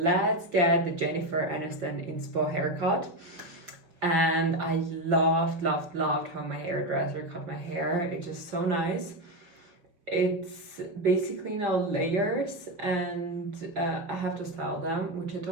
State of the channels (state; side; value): late; left; 5.6 ms